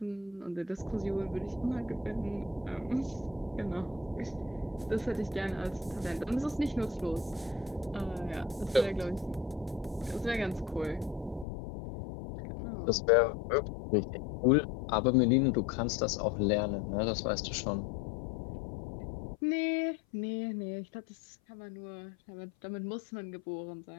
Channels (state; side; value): drops out; right; at 11.5 s